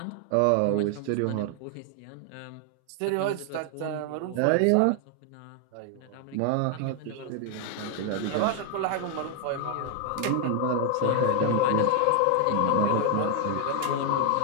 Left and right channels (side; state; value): both; different; correlation 0.00